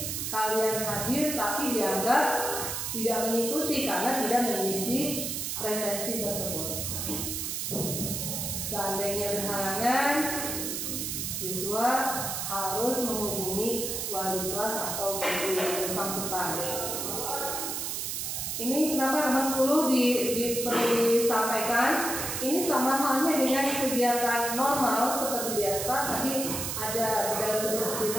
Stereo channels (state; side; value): noise; right; hiss, 3 dB below the sound